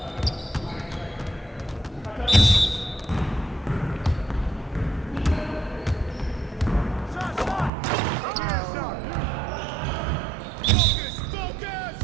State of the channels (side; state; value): left; drops out; at 7.7 s